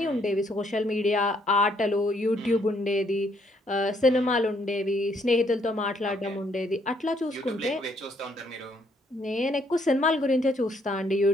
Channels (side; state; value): both; normal; correlation 0.69